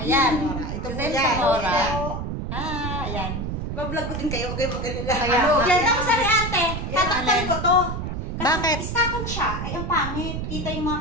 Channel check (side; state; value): right; noise; rumble, 4 dB below the sound